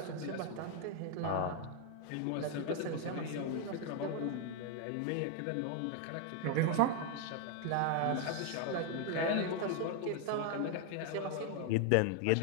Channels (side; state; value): both; different; correlation 0.01